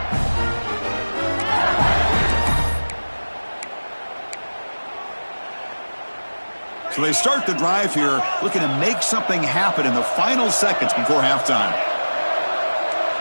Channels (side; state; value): both; inverted; correlation -1.00